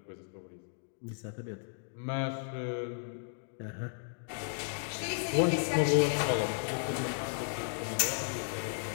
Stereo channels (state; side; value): silent; right; digital silence